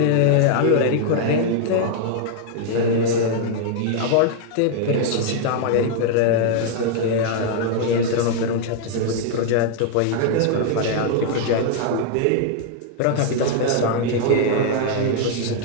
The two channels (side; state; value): both; different; correlation 0.00